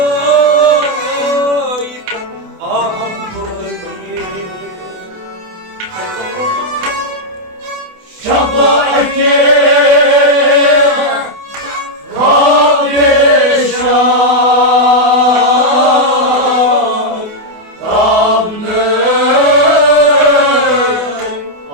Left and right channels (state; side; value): late; left; 28 ms